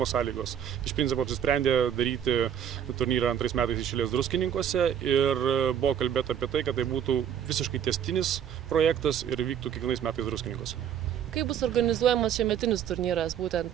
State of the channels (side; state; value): left; quieter; 9.2 dB